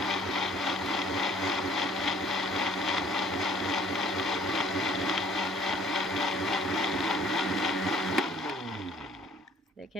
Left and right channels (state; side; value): normal; both; correlation 0.57